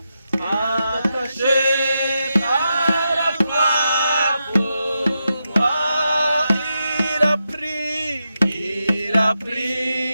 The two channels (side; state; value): both; inverted; correlation -0.87